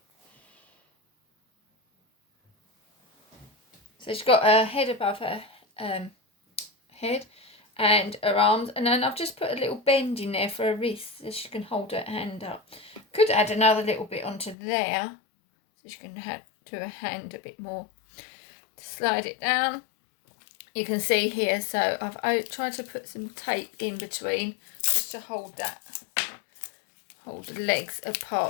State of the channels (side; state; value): right; drops out; at 14.6 s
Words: So she's got her head above her head and her arms, and then I've just put a little bend in there for her wrist so she can hold her hand up. Could add another little bit onto there so she can do her hand a bit more. Slide it down. You can see here, so I've tried to put some tape in between just to hold the legs